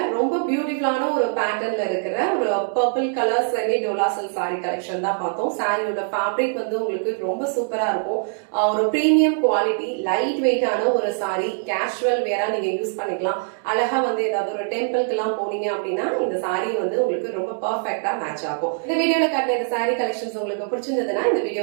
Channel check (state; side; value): silent; left; digital silence